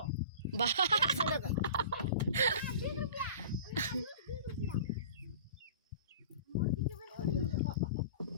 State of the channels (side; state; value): both; inverted; correlation -0.40